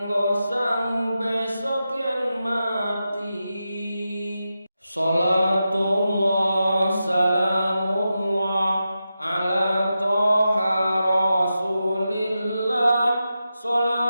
sangu besok yen mati. Salatullah salamullah ala toha rasulillah.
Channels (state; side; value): inverted; both; correlation -0.90